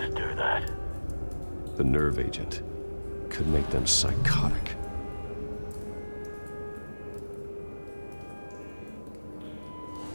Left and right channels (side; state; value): both; inverted; correlation -1.00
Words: do that? The nerve agent could make them psychotic.